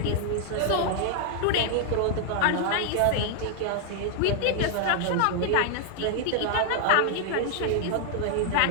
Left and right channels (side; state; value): both; different; correlation 0.00